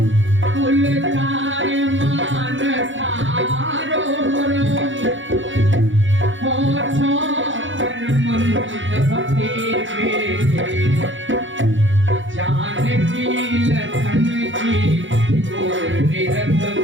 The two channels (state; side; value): late; left; 0.56 ms